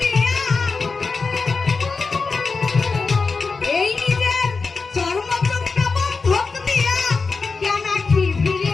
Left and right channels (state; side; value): quieter; right; 4.4 dB